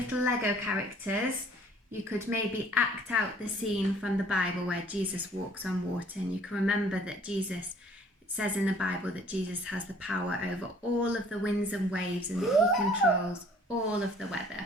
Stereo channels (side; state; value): both; normal; correlation 0.56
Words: Lego characters, you could maybe act out the scene from the Bible where Jesus walks on water, and you can remember that Jesus, it says in the Bible that Jesus has the power over all of the winds and waves and that he controls all of the